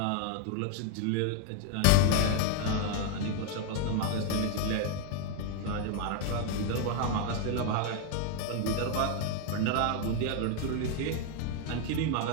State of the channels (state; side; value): different; both; correlation 0.01